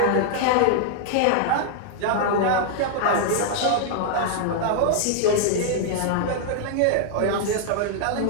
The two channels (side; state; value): both; different; correlation -0.01